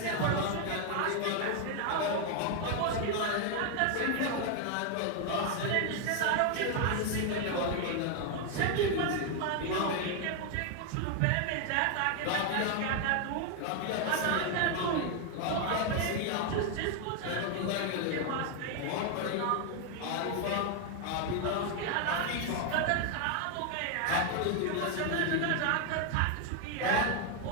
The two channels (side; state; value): both; different; correlation 0.01